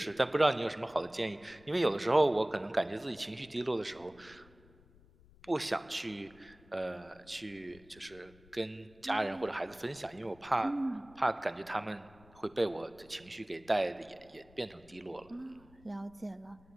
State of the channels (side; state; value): left; noise; rumble, 25 dB below the sound